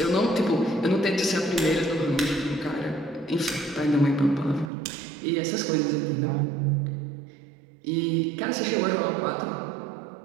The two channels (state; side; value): drops out; left; at 4.7 s